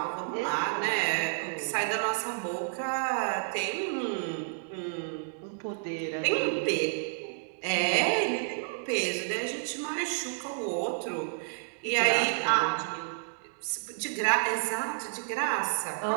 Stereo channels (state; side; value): silent; left; digital silence